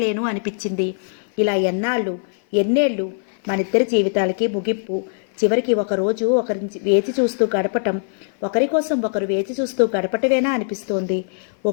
అనిపించింది. ఇలా ఎన్నేళ్ళు మనిద్దరి జీవితాలకి ముగింపు. చివరికి ఒకరోజు ఒకరి వేచి చూస్తూ గడపటం, ఒకరి కోసం ఒకరు వేచి చూస్తూ గడపటమేనా అనిపిస్తోంది.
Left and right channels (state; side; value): silent; right; 56 dB below the other